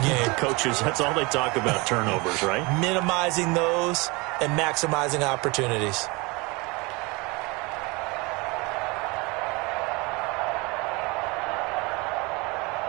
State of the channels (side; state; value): left; quieter; 26.0 dB